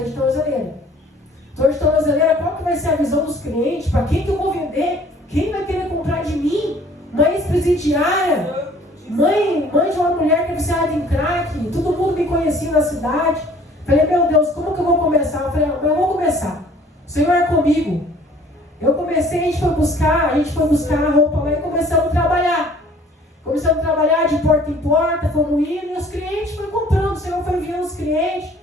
de tornozeleira. Estou de tornozeleira, qual que vai ser a visão dos clientes? Para quem que eu vou vender? Quem vai querer comprar de mim? Mãe ex-presidiária, mãe de uma mulher que é viciada em crack, todo mundo me conhecia na cidade. Falei, meu Deus, como que eu vou começar? Eu falei, eu vou começar. O Senhor é comigo. Eu comecei, a gente foi buscar a roupa lá e começamos a trabalhar. Começamos a trabalhar de porta em porta, fomos indo, e os clientes foram comprando. O Senhor foi enviando os clientes.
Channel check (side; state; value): both; normal; correlation 0.54